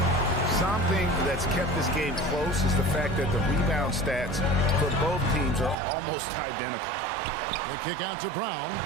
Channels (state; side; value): drops out; left; at 5.8 s